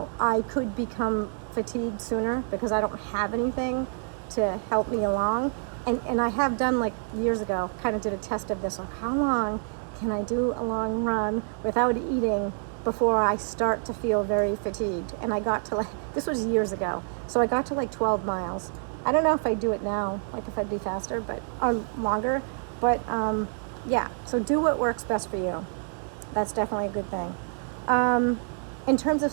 could become fatigued sooner because I don't have anything to help me along. And I have done, like, years ago, kind of did a test of this, like, how long can I do a long run without eating before I start to feel very fatigued? And I got to, this was years ago, so I got to 12 miles. I don't know if I'd do it now, like if I'd be faster, but longer. But yeah, so do what works best for you. That's definitely a good thing. In terms of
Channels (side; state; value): left; silent; digital silence